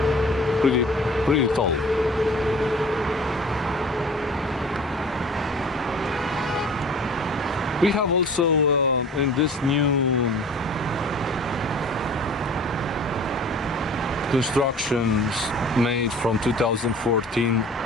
pretty tall. We have also in this new constructions made from 2014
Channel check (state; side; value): normal; both; correlation 0.45